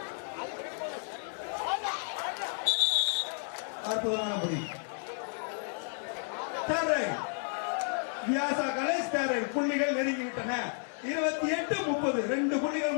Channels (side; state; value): right; silent; 56 dB below the other